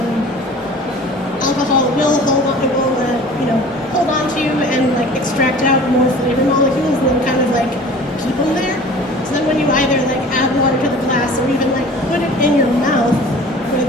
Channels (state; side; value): normal; both; correlation 0.44